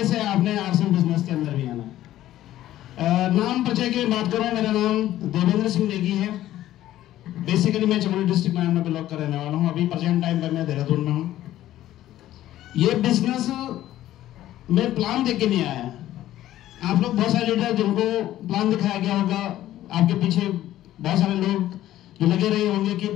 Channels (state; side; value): quieter; right; 13.7 dB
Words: से आपने आरसीएम बिजनेस के अंदर भी आना। नाम परिचय की बात करूं, मेरा नाम देवेंद्र सिंह नेगी है। बेसिकली मैं चमोली डिस्ट्रिक्ट में बिलोंग कर रहने वाला हूँ। अभी प्रेजेंट टाइम पर मैं देहरादून में हूँ। ये बिजनेस में प्लान देख के नहीं आया। आप लोग बहुत सारे लीडर जिनको प्लान दिखाया गया होगा, आपके पीछे बहुत सारे लोग जो लगे रहे होंगे कि